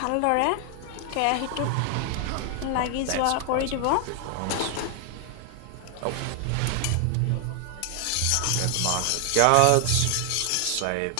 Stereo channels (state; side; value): different; both; correlation 0.00